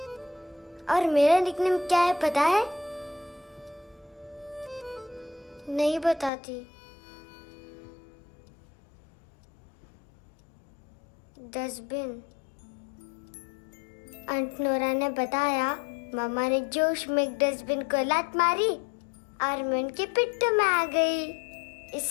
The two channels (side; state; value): right; drops out; at 6.3 s